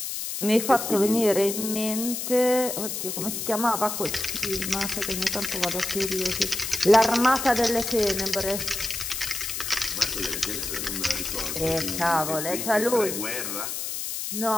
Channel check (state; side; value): noise; left; hiss, 4 dB below the sound